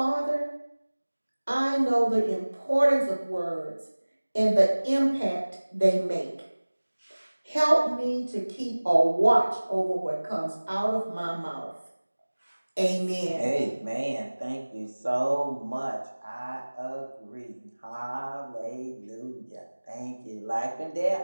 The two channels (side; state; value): both; inverted; correlation -1.00